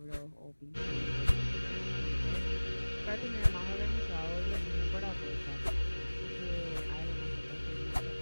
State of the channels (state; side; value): inverted; both; correlation -1.00